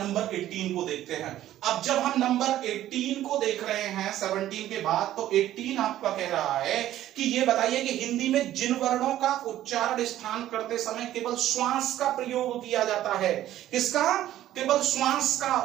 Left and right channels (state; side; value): quieter; left; 13.1 dB